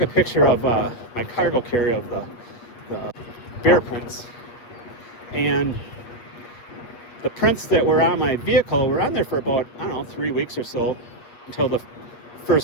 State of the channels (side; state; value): right; late; 8.3 ms